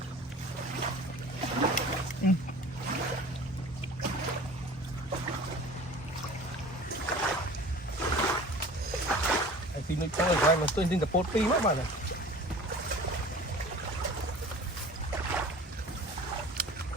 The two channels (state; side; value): normal; both; correlation 0.42